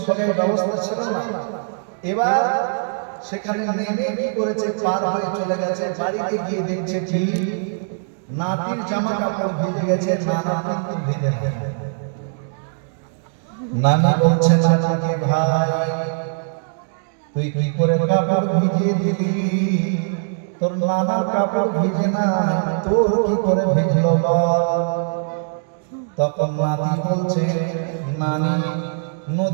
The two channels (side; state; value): left; silent; digital silence